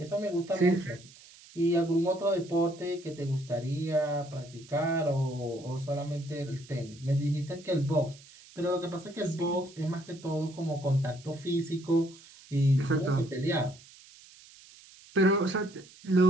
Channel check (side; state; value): right; noise; hiss, 22 dB below the sound